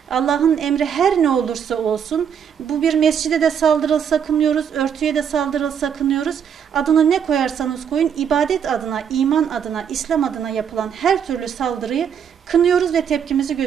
Allah'ın emri her ne olursa olsun, bu bir mescide de saldırılsa kınıyoruz, örtüye de saldırılsa kınıyoruz. Adını ne koyarsanız koyun, ibadet adına, iman adına, İslam adına yapılan her türlü saldırıyı kınıyoruz ve tepkimizi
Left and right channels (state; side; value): quieter; left; 7.9 dB